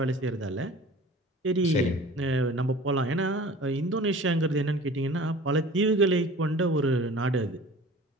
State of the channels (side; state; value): both; normal; correlation 0.43